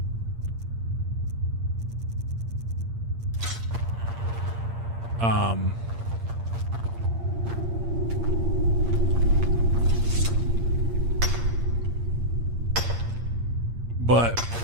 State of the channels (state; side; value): late; left; 8.7 ms